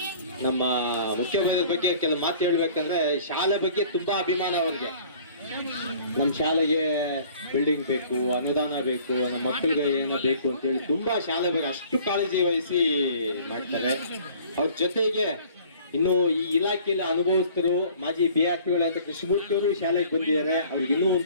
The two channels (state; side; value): inverted; both; correlation -0.52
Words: ನಮ್ಮ ಮುಖ್ಯೋಪಾಧ್ಯಾಯರ ಬಗ್ಗೆ ಕೆಲವು ಮಾತು ಹೇಳ್ಬೇಕಂದ್ರೆ, ಶಾಲೆ ಬಗ್ಗೆ ತುಂಬಾ ಅಭಿಮಾನ ಅವ್ರಿಗೆ. ನಮ್ಮ ಶಾಲೆಗೆ ಬಿಲ್ಡಿಂಗ್ ಬೇಕು, ಅನುದಾನ ಬೇಕು, ನಮ್ಮ ಮಕ್ಕಳಿಗೆ ಏನೋ ಬೇಕು ಅಂತೇಳಿ ತುಂಬಾ ಶಾಲೆ ಬಗ್ಗೆ ಅಷ್ಟು ಕಾಳಜಿ ವಹಿಸಿ ಮಾಡ್ತಾರೆ. ಅವ್ರ ಜೊತೆಗೆ ಇನ್ನು ಈ ಇಲಾಖೆಯಲ್ಲಿ ಅನುಭವಿಸ್ತರು ಮಾಜಿ BRTಗಳು ಅಂತ ಕೃಷ್ಣಮೂರ್ತಿ ಅವರು ಶಾಲೆಗೆ ಬಂದಿದ್ದಾರೆ. ಅವ್ರಿಗೆ ಇನ್ನೂ